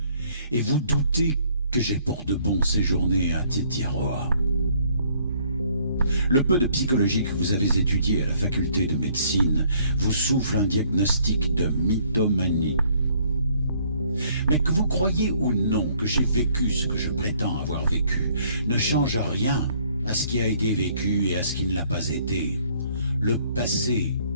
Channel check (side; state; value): both; inverted; correlation -0.62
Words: Et vous doutez que j'ai pour de bon séjourné à Tetiaroa. Le peu de psychologie que vous avez étudié à la faculté de médecine vous souffle un diagnostic de mythomanie. Mais que vous croyez ou non que j'ai vécu ce que je prétends avoir vécu ne change rien à ce qui a été vécu et à ce qui ne l'a pas été. Le passé